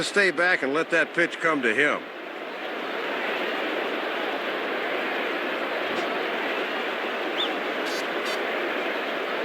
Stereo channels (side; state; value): both; identical; correlation 1.00